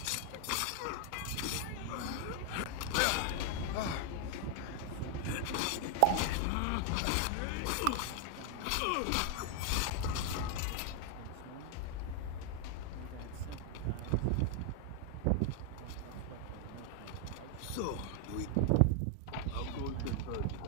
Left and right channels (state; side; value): different; both; correlation 0.00